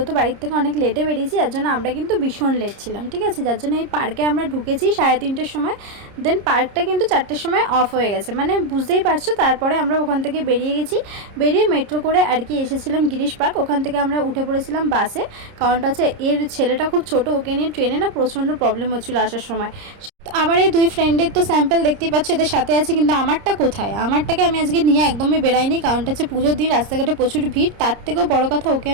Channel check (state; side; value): late; left; 30 ms